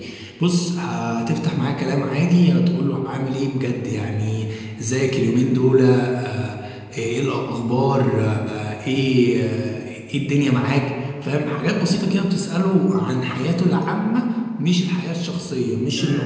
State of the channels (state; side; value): identical; both; correlation 1.00